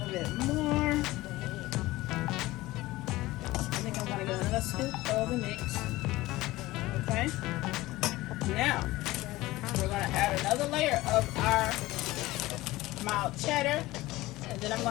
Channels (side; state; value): right; quieter; 18.5 dB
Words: bit more. I think I'm going to get another scoop of the mix. Okay? Now, we're going to add another layer of our mild cheddar. And then I'm